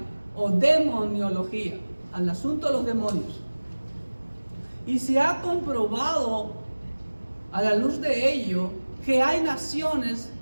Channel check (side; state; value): both; inverted; correlation -1.00